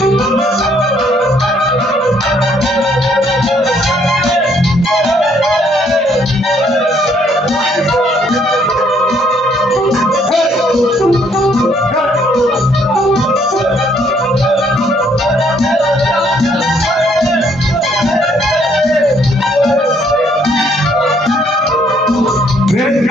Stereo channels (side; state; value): both; normal; correlation 0.67